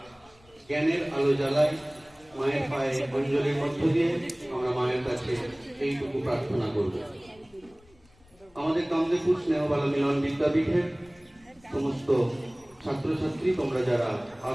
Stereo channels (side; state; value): left; noise; rumble, 29 dB below the sound